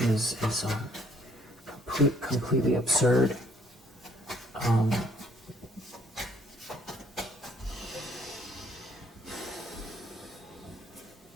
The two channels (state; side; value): normal; both; correlation 0.64